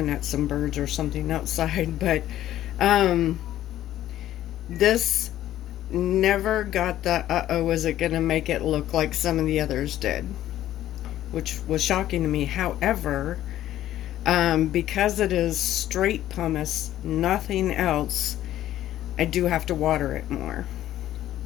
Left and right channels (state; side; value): quieter; right; 13.0 dB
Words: at some birds or something outside. But this never got the uh-oh, is it gonna make it look like some of the others did, which was shocking to me. However, because it is straight pumice, nothing else, I do have to water it more.